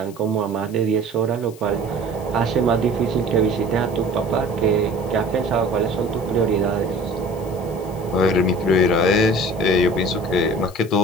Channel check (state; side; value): noise; left; hiss, 22 dB below the sound